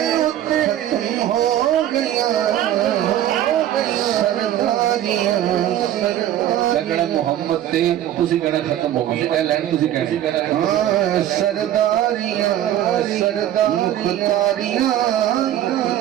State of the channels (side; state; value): left; quieter; 12.1 dB